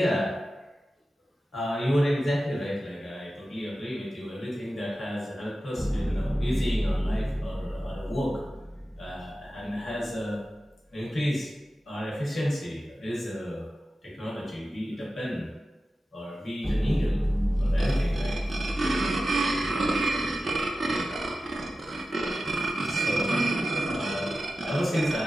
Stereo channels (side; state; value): both; normal; correlation 0.94